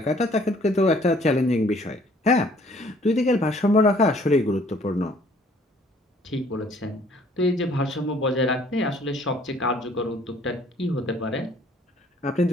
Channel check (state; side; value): normal; both; correlation 0.59